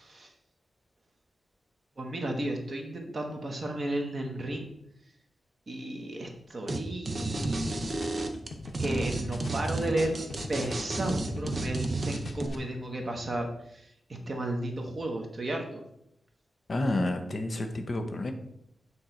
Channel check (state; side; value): normal; both; correlation 0.90